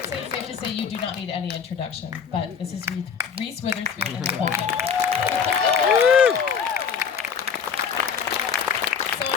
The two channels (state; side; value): quieter; right; 6.7 dB